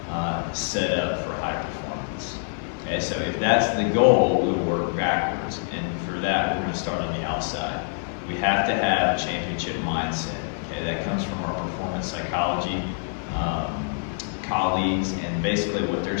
set up for high performance. Okay, so if that's the goal, we'll work backwards. And for that, we're going to start on the outside. We have to have a championship mindset. Okay, that comes from our performance psychology colleagues, and basically what they're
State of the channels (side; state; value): right; silent; digital silence